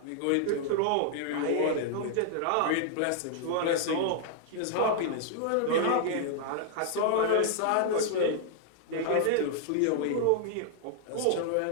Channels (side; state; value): both; different; correlation 0.00